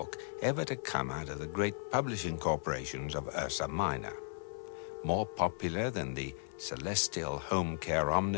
ever to come out of the great publishing corporations of Ursa Minor. More popular than the Celestial Home Care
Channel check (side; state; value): right; silent; 54 dB below the other